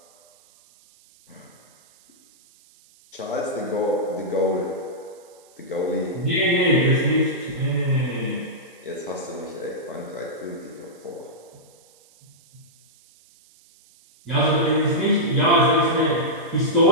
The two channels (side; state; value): right; noise; hiss, 29 dB below the sound